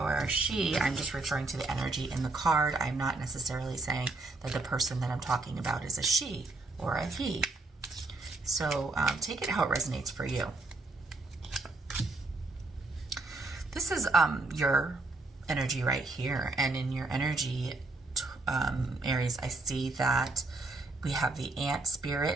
she, I'm just referring to the energy in the card. I'm not necessarily saying that the person that I'm talking about is a she or a he. So take it how it resonates for you. This is your energy right here, and in your energy, Aries, I see that we have the ant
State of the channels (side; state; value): left; quieter; 3.2 dB